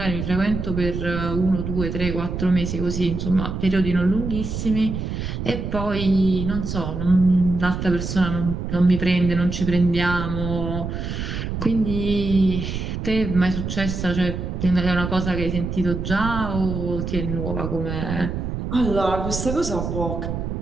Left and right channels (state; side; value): noise; right; rumble, 4 dB below the sound